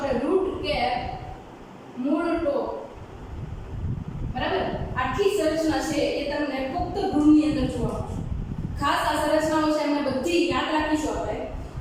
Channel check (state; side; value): identical; both; correlation 1.00